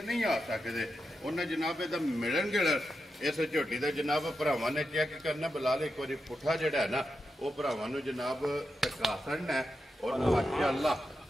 ਨਹੀਂ ਆ ਸਕਦੇ ਉਹਨਾਂ ਜਨਾਬ ਇਹਦਾ ਮਿਲਣ ਗਿਲਣ ਇਸ ਝੋਟੀ ਦਾ ਜਨਾਬ ਭਰਾਵਾਂ ਨੇ ਚੈੱਕ ਕਰਨਾ ਬਲਾਲ ਇੱਕ ਵਾਰੀ ਪੁੱਠਾ ਜਿਹੜਾ ਹੈ ਨਾ ਉਹ ਭਰਾਵਾਂ ਨੂੰ ਜਨਾਬ ਟਕਾ ਸੜਨਾ ਔਰ ਮਾਸ਼ਾਅੱਲਾ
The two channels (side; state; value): both; normal; correlation 0.88